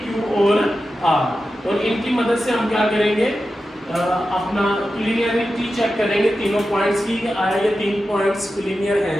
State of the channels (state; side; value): normal; both; correlation 0.92